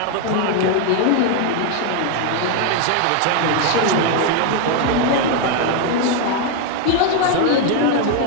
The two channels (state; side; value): different; both; correlation 0.01